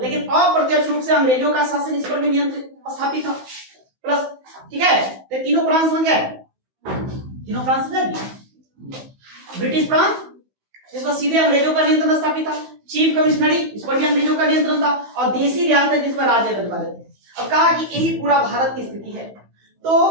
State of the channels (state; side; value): late; left; 15 ms